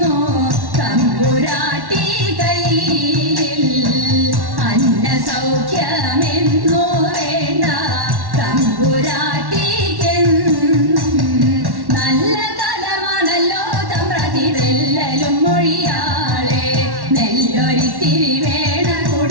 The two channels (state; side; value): late; left; 1.1 ms